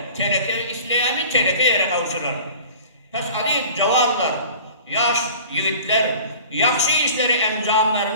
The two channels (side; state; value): both; inverted; correlation -0.43